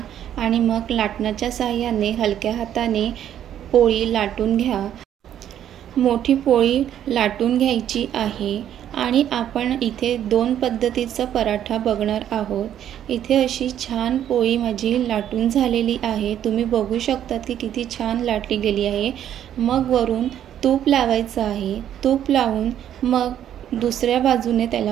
आणि मग लाटण्याच्या साहाय्याने हलक्या हाताने पोळी लाटून घ्या। मोठी पोळी लाटून घ्यायची आहे आणि आपण इथे 2 पद्धतीचा पराठा बघणार आहोत। इथे अशी छान पोळी माझी लाटून झालेली आहे। तुम्ही बघू शकता की किती छान लाटली गेली आहे। मग वरून तूप लावायचं आहे। तूप लावून मग दुसऱ्या बाजूने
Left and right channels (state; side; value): quieter; left; 10.5 dB